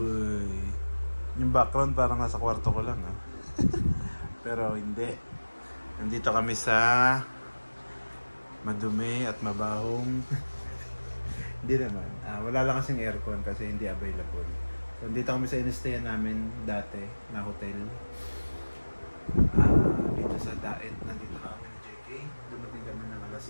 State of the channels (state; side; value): inverted; both; correlation -1.00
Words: Yung background parang nasa kwarto ko lang, ha? Pero hindi. Nandito kami sa madumi at mabahong. Hindi naman. Wala lang kasing aircon kasi hindi available. So, nandito kami sa in-stayan namin dati na hotel. Dito sa Daet. Nandito kami ni JK. Dumating kami ng alas